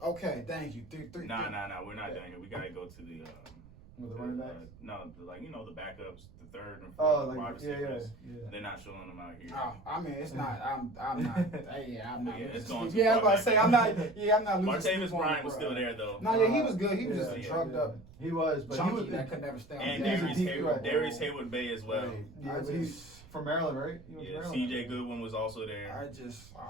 Okay, thank you. Three. Nah. We're not done here. We gotta go to the the running backs. The backups, the third and fourth wide receivers. Yeah. They're not showing them out here. Oh, I mean, it's not. I'm not. I'm not. It's going I was about to say I'm not. Yeah, I'm not losing. Martavis Bryant was still there though. No, he was good. He was just drugged up. He was, but chunky he was that could never stay on. And Darius Haywood Bay as well. Right. Yeah, but he's from Maryland, right? CJ Goodwin was also there. I don't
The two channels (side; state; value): right; noise; rumble, 20 dB below the sound